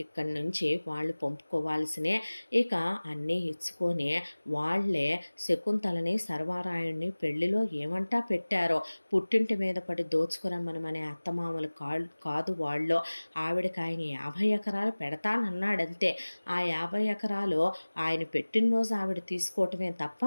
ఇక్కడి నుంచి వాళ్ళు పంపుకోవాల్సినే, ఇక అన్నీ ఇచ్చుకొని వాళ్ళే శకుంతలని సర్వారాయుడిని పెళ్లిలో ఏమంటా పెట్టారో, పుట్టింటి మీద పడి దోచుకురమ్మనమనే అత్తమామలు కాదు వాళ్ళు. ఆవిడకి ఆయన 50 ఎకరాలు పెడతానన్నాడంతే. ఆ 50 ఎకరాలు ఆయన పెట్టినరోజు ఆవిడ తీసుకోవటమే తప్ప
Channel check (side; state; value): both; inverted; correlation -1.00